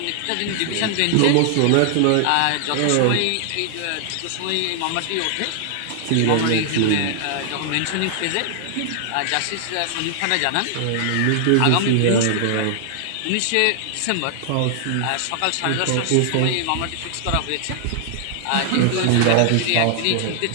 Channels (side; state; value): both; different; correlation 0.00